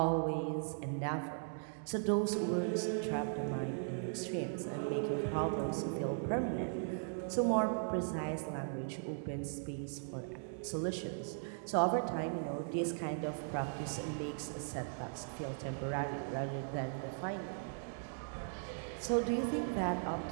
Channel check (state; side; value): silent; left; digital silence